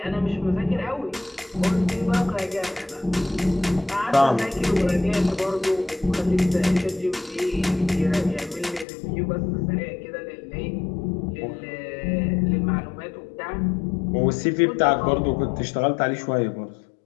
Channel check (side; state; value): right; drops out; at 8.8 s